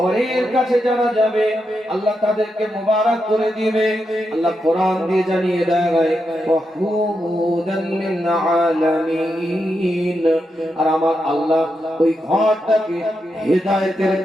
কাছে যারা যাবে আল্লাহ তাদেরকে মুবারক করে দিবে। আল্লাহ কোরআন দিয়ে জানিয়ে দেয়, ওয়াহুদাল লিল আলামিন। আর আমার আল্লাহ ওই ঘরটাকে হেদায়েতের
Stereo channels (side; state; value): both; normal; correlation 0.85